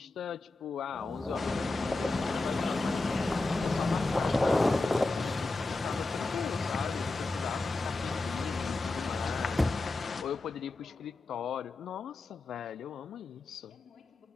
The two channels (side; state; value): right; quieter; 3.2 dB